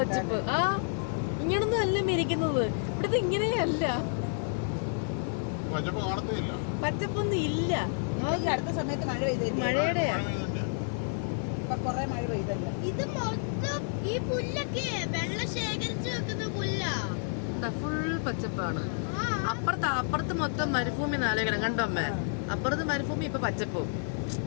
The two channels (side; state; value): right; silent; digital silence